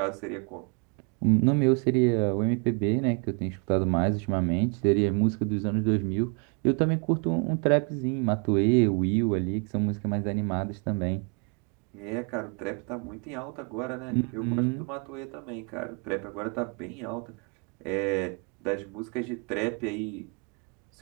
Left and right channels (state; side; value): quieter; left; 36.3 dB